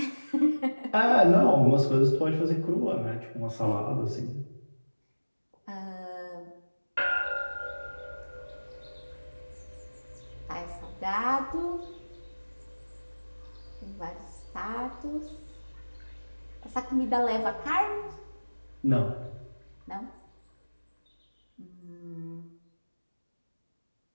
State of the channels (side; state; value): both; inverted; correlation -1.00